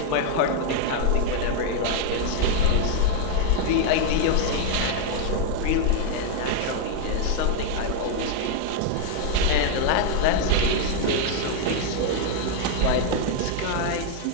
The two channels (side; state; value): both; different; correlation 0.00